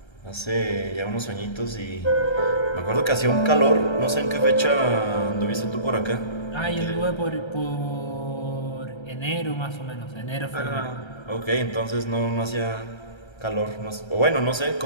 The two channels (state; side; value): late; right; 1.3 ms